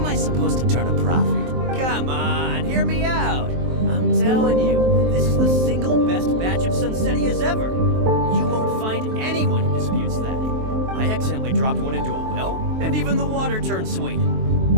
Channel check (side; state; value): left; late; 23 ms